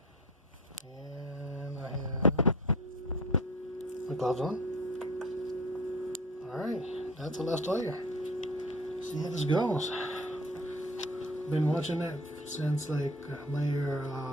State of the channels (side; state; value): both; normal; correlation 0.41